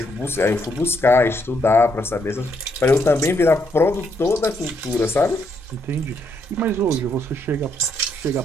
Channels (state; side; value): normal; both; correlation 0.75